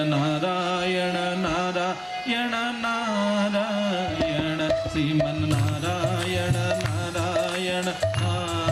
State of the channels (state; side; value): identical; both; correlation 1.00